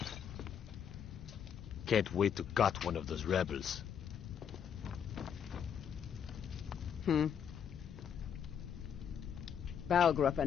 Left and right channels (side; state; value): right; quieter; 8.2 dB